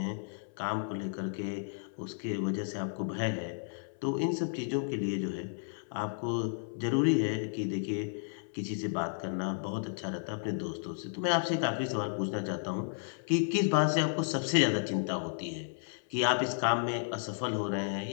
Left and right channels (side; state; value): right; silent; 56 dB below the other